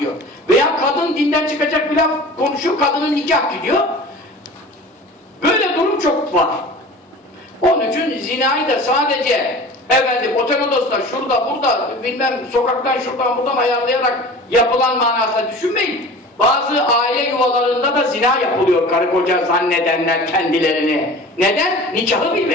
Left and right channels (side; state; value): both; normal; correlation 0.39